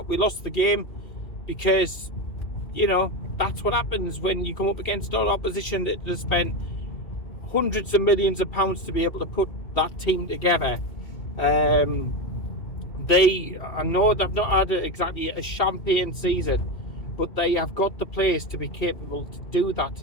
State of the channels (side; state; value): right; late; 2.7 ms